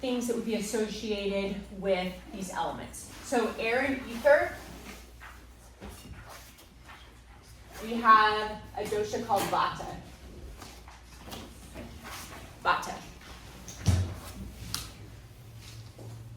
things that would be associated with these elements. So air and ether. We have a dosha called Vata. Vata.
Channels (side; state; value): both; identical; correlation 1.00